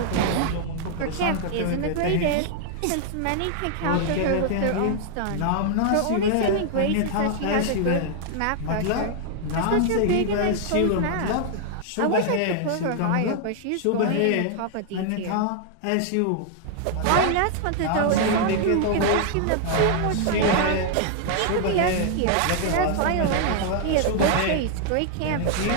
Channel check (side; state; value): both; different; correlation 0.00